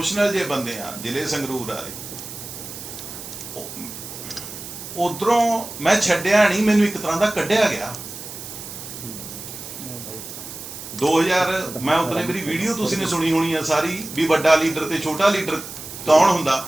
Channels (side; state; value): right; noise; hiss, 11 dB below the sound